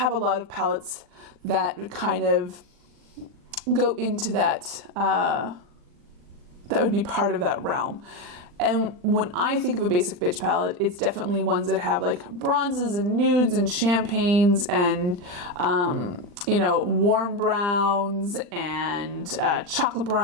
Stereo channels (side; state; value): left; late; 40 ms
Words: a lot of palettes that kind of go into that, that would be part of that realm. And when I think of a basic bitch palette, it's definitely ones that have like bronzes and nudes and champagnes and, you know, warm browns and chocolate